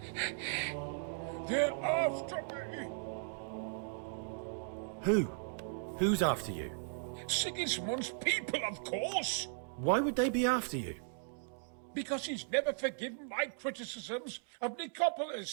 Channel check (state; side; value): silent; left; digital silence